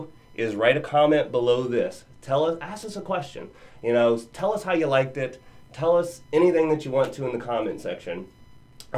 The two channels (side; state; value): both; identical; correlation 1.00